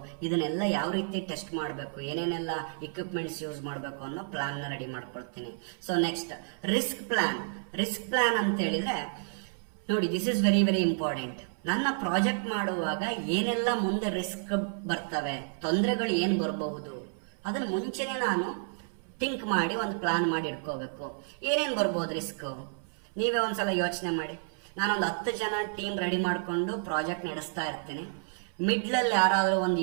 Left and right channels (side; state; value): left; silent; 57 dB below the other